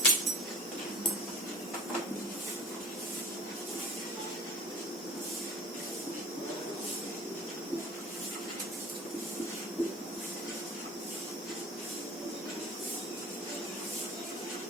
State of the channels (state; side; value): normal; both; correlation 0.42